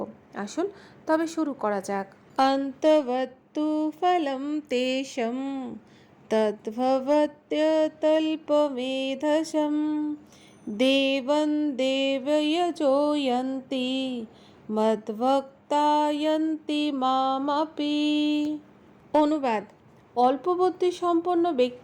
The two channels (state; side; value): identical; both; correlation 1.00